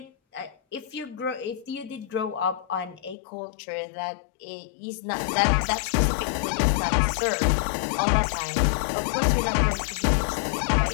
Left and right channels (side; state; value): right; drops out; at 3.2 s